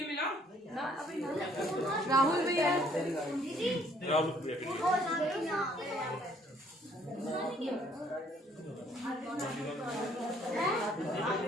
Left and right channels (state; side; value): normal; both; correlation 0.63